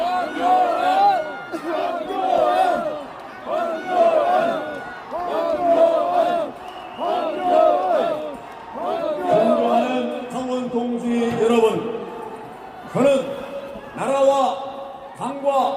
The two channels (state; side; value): identical; both; correlation 1.00